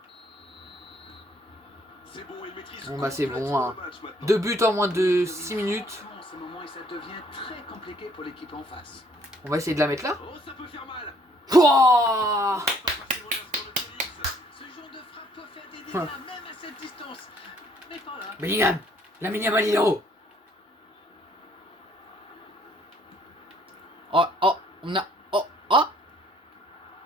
Bon bah c'est bon, hein. 2 buts en moins de 6 minutes. En ce moment, et ça devient très compliqué pour l'équipe en face. On va essayer de la mettre là. Oh, ça peut faire mal. Pouah, Ce genre de frappe peut faire des dégâts même à cette distance. Mais pas là. Bellingham, Lamine Yamal il est haut. Oh, oh, on a... Oh, oh.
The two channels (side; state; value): both; normal; correlation 0.63